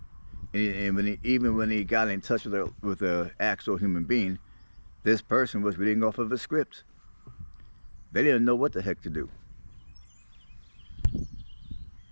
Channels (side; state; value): both; inverted; correlation -1.00